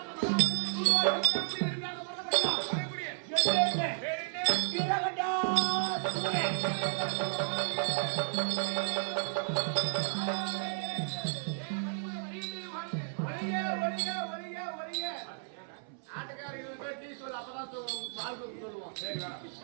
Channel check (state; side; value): silent; left; 56 dB below the other